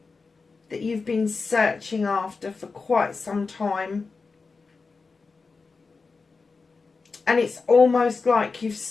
that you've been searching after for quite some time. And it's almost like you've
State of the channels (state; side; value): quieter; right; 4.4 dB